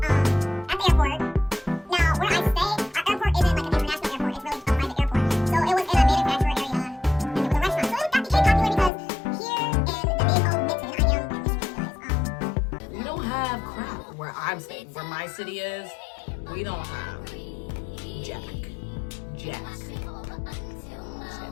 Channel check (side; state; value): right; drops out; at 8.9 s